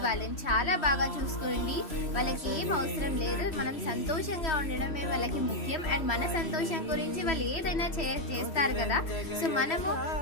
వాళ్ళని చాలా బాగా చూసుకోండి. వాళ్ళకి ఏం అవసరం లేదు, మనం సంతోషంగా ఉండడమే వాళ్ళకి ముఖ్యం. అండ్ మన సంతోషం గురించి వాళ్ళు ఏదైనా చేస్తారు కదా, సో మనము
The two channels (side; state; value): right; late; 3.0 ms